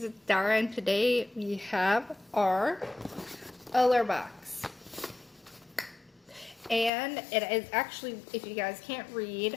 it's Dara, and today we have our Allure box. And it is actually, if you guys can't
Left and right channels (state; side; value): drops out; right; at 6.9 s